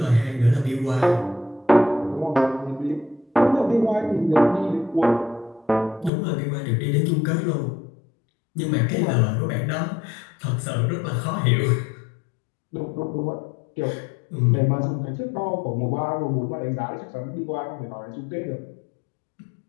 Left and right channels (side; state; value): right; drops out; at 6.1 s